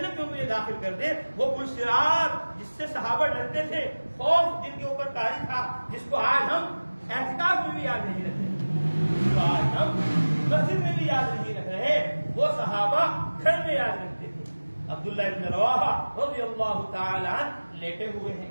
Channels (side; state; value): both; inverted; correlation -1.00